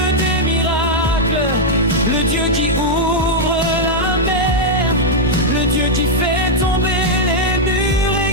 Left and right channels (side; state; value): both; normal; correlation -0.03